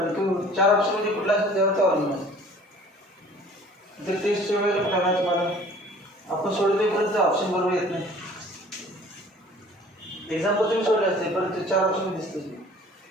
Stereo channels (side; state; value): both; normal; correlation 0.50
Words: चार ऑप्शन मध्ये कुठला असेल त्यावर अवलंबून जर टेस्टच्या वेळेला करायचं मला आपण सोडवेपर्यंत ऑप्शन बरोबर येत नाही एक्झाम्पल तुम्ही सोडले असते परंतु चार ऑप्शन दिसते